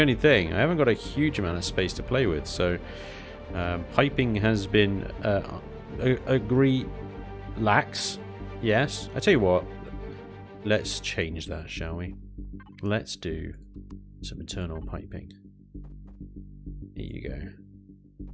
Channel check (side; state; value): both; identical; correlation 1.00